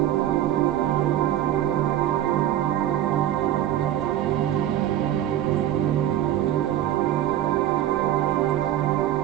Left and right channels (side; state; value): left; quieter; 12.2 dB